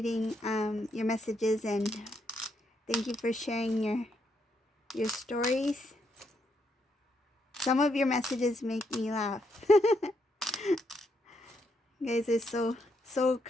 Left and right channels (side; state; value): both; normal; correlation 0.77